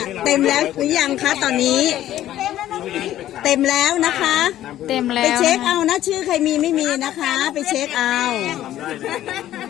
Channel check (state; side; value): quieter; right; 13.0 dB